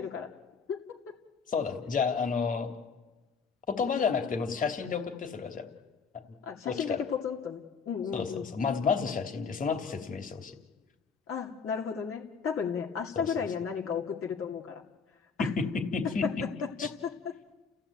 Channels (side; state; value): right; quieter; 5.6 dB